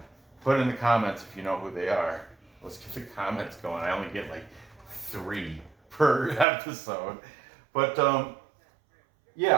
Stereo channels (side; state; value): left; drops out; at 6.5 s